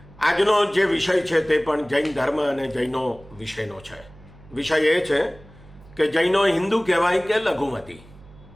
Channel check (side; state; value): right; noise; hum, 23 dB below the sound